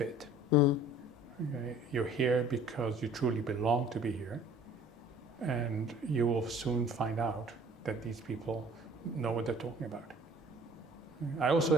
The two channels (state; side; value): normal; both; correlation 0.51